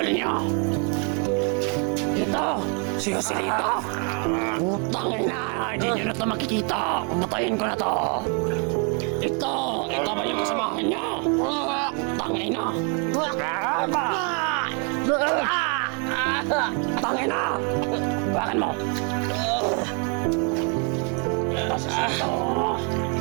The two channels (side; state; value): left; quieter; 37.3 dB